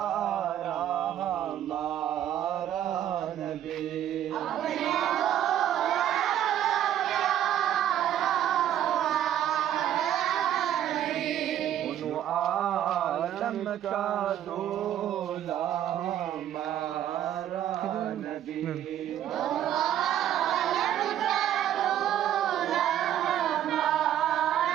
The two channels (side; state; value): left; quieter; 11.2 dB